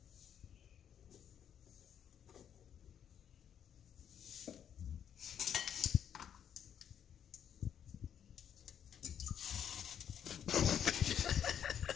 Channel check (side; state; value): right; quieter; 8.9 dB